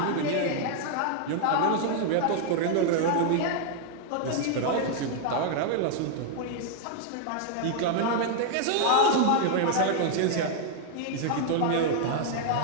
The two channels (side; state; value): both; different; correlation -0.01